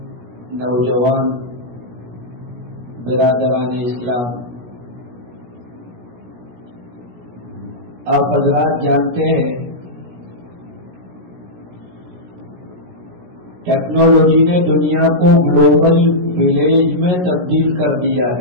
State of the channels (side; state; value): left; late; 17 ms